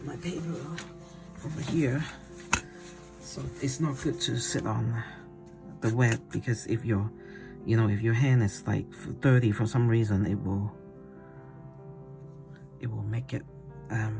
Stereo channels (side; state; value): both; identical; correlation 1.00